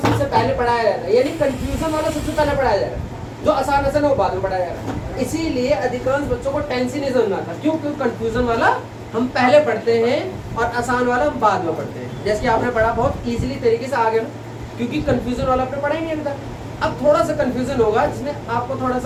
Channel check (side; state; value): both; identical; correlation 1.00